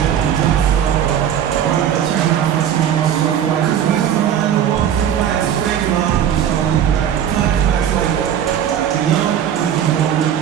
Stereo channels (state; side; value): quieter; left; 9.5 dB